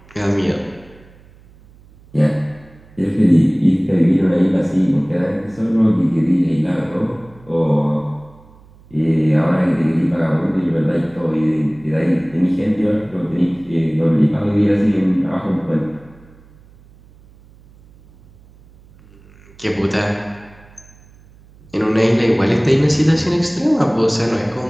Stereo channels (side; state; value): right; noise; hum, 26 dB below the sound